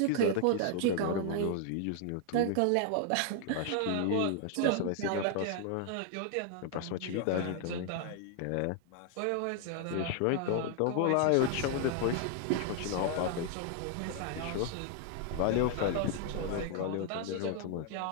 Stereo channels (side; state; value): both; different; correlation 0.00